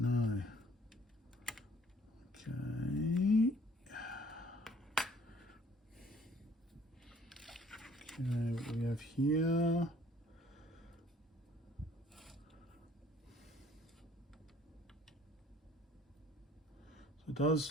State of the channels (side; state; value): both; normal; correlation 0.58